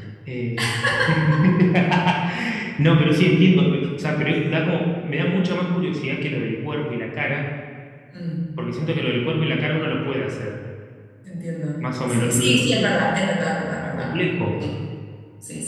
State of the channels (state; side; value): identical; both; correlation 1.00